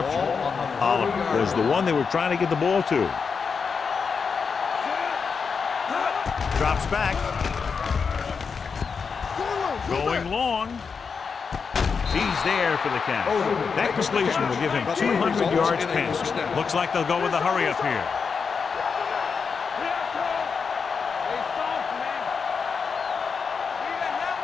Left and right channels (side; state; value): right; quieter; 5.6 dB